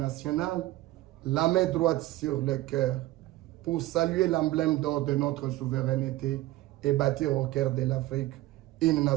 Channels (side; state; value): left; quieter; 16.8 dB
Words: la main droite sur le cœur, pour saluer l'emblème d'or de notre souveraineté et bâtir au cœur de l'Afrique une